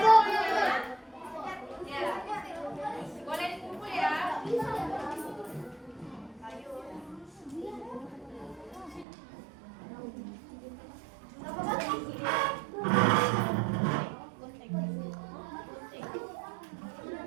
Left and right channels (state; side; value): drops out; left; at 9.1 s